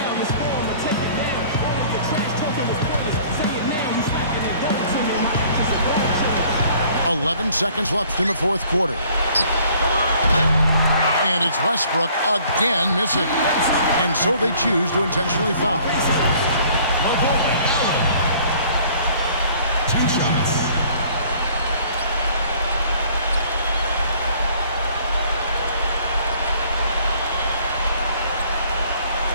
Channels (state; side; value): inverted; both; correlation -0.56